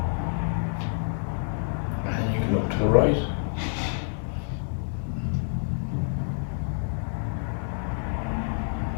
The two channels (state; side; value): silent; right; 60 dB below the other